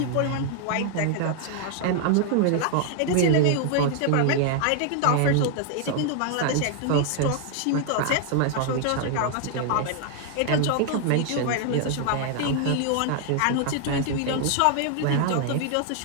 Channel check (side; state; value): both; different; correlation 0.00